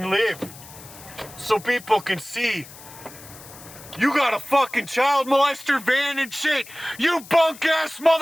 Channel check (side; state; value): left; noise; hiss, 18 dB below the sound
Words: live so people can see you got a fucking child molester van and shit. You bunk ass